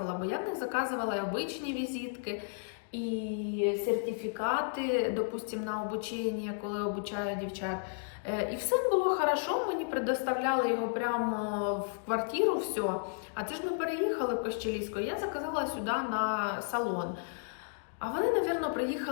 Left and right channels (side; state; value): right; silent; digital silence